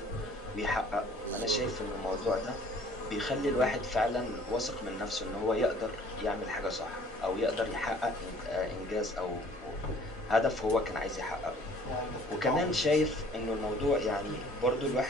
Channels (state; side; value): normal; both; correlation 0.54